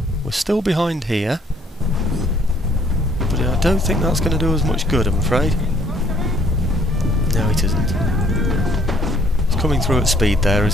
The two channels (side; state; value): both; normal; correlation 0.62